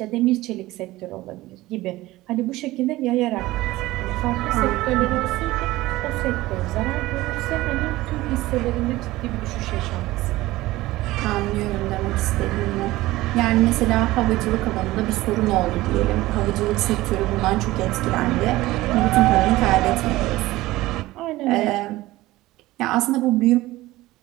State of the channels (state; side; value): quieter; left; 17.9 dB